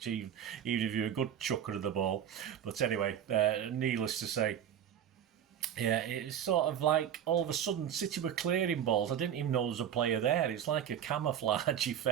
even if you're a good chucker of the ball. But anyway, needless to say, yeah, it's sort of like all of a sudden City were clearing balls. I didn't even know there was a player there. It's like a camouflage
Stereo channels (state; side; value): quieter; left; 9.5 dB